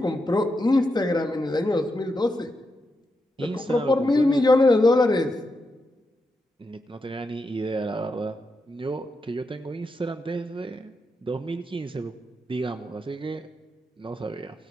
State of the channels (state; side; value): normal; both; correlation 0.85